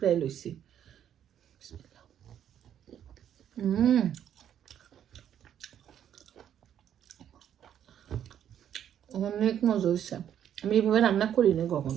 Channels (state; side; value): quieter; left; 9.9 dB